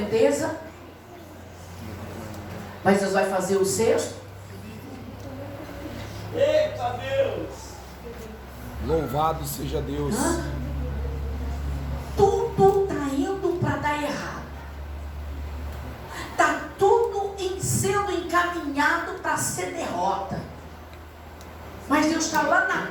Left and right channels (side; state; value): both; identical; correlation 1.00